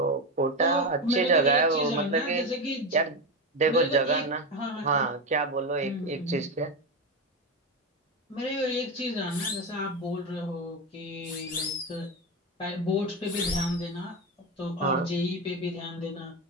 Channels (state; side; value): normal; both; correlation 0.15